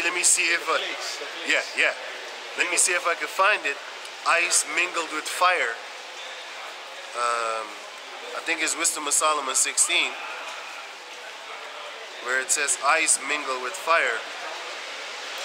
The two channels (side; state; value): both; identical; correlation 1.00